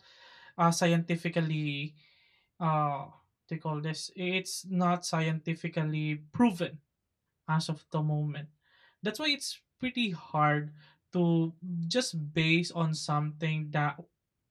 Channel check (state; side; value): identical; both; correlation 1.00